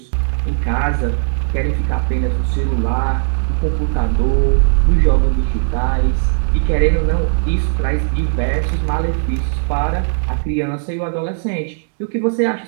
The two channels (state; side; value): silent; left; digital silence